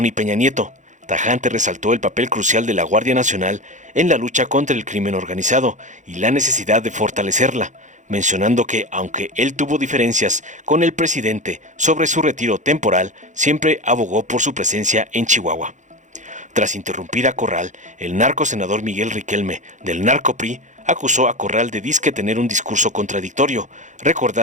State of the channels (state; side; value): late; left; 0.35 ms